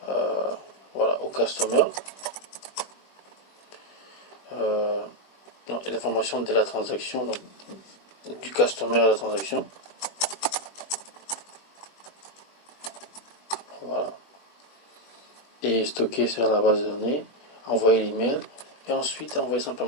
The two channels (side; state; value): right; late; 20 ms